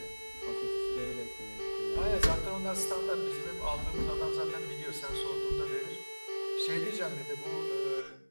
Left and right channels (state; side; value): inverted; both; correlation -1.00